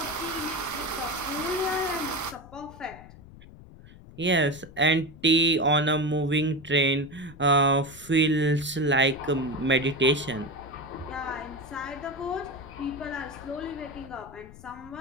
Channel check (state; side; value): noise; left; rumble, 19 dB below the sound